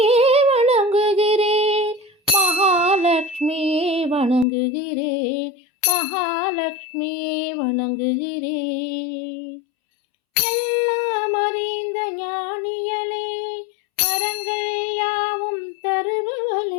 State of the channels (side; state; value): right; drops out; at 4.5 s